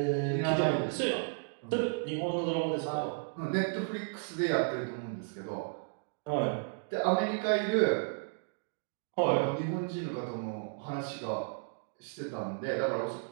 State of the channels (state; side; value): silent; left; digital silence